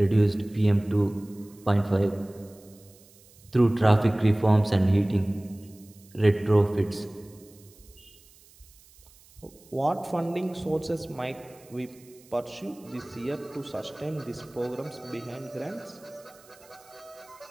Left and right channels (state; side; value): noise; right; hiss, 26 dB below the sound